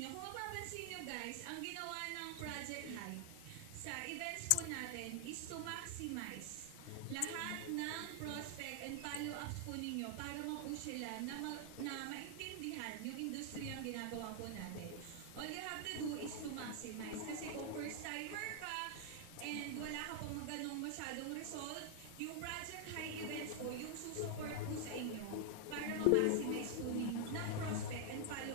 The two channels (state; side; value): different; both; correlation 0.00